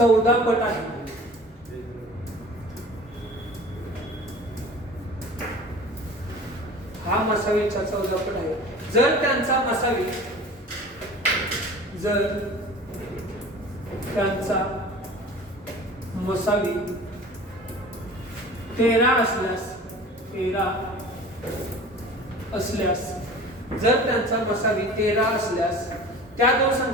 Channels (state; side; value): normal; both; correlation 0.41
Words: पट आहे हा मसावीच्या 14 पट आहे जर त्यांचा मसावी मसावी 13 असल्यास जर त्यांचा मसावी 13 असल्यास त्या दोन